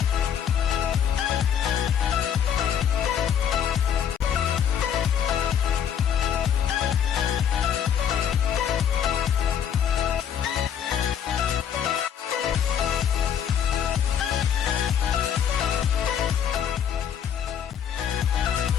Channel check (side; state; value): right; quieter; 8.7 dB